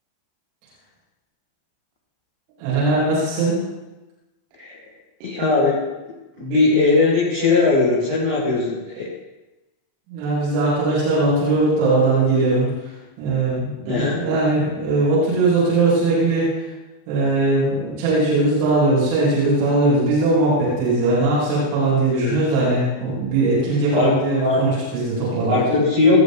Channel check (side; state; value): left; late; 37 ms